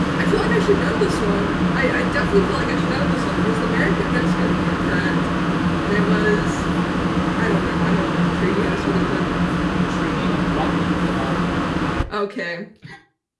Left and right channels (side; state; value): both; identical; correlation 1.00